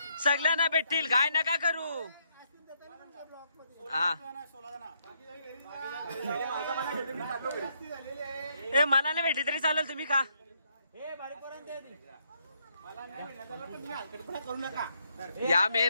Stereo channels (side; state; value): both; inverted; correlation -0.74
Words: सगळ्यांना भेटतील काय नका करू. हा ए मला नाही भेटली तरी चालेल तुम्ही खा. करू नका. या